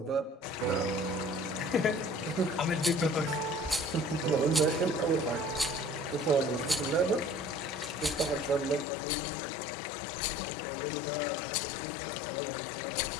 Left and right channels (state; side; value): drops out; right; at 8.8 s